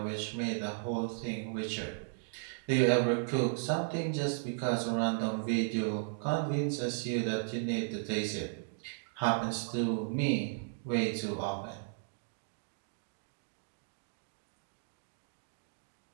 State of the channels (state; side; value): silent; left; digital silence